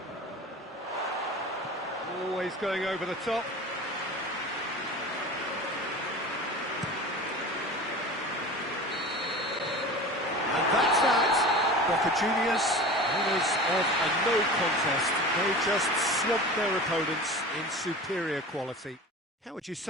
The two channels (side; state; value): both; normal; correlation 0.35